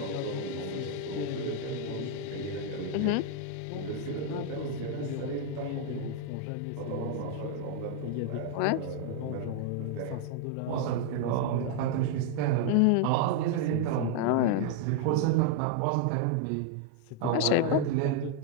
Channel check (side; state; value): both; different; correlation 0.00